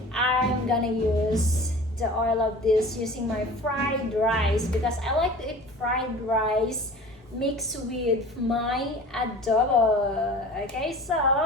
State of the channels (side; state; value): both; normal; correlation 0.41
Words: I'm gonna use the oil of this using my fried rice because I like to eat fried rice mixed with my adobo. Okay, so